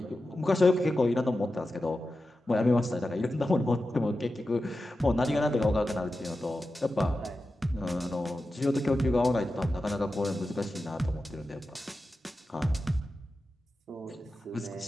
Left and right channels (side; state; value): both; normal; correlation 0.92